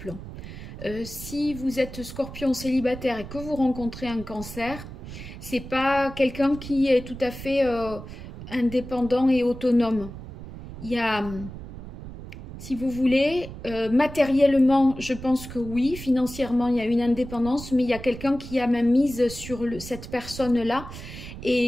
Si vous êtes Scorpion célibataire et que vous rencontrez un cancer, c'est pas quelqu'un qui est tout à fait indépendant et autonome. Il y a, si vous voulez, matériellement, je pense que oui, financièrement, il y a une indépendance, mais il y a quelqu'un qui a même mise sur cette personne-là.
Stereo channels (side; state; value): right; noise; rumble, 12 dB below the sound